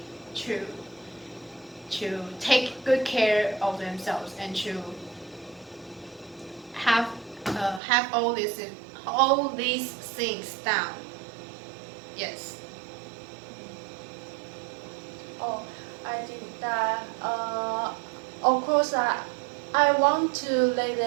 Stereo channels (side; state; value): left; drops out; at 7.8 s